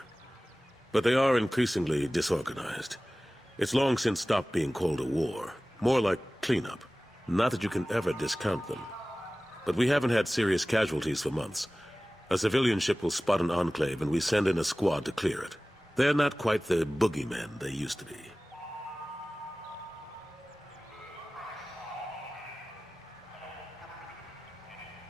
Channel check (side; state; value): both; normal; correlation 0.97